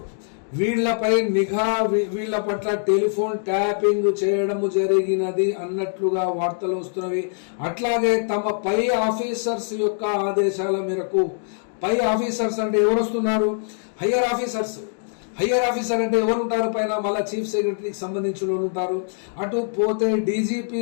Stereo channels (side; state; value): right; silent; digital silence